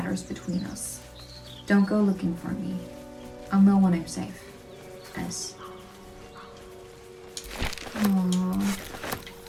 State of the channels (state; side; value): identical; both; correlation 1.00